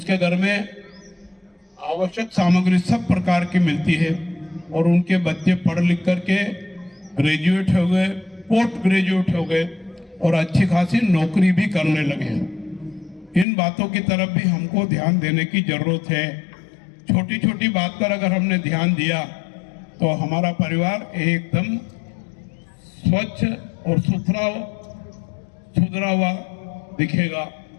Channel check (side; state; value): right; drops out; at 13.5 s